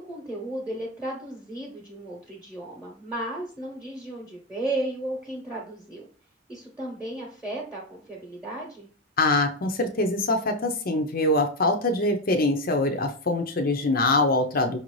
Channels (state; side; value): normal; both; correlation 0.10